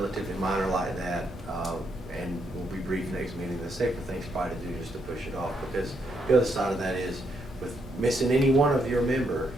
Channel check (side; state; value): both; normal; correlation 0.76